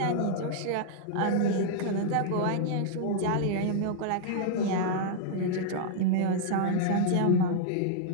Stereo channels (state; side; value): different; both; correlation -0.01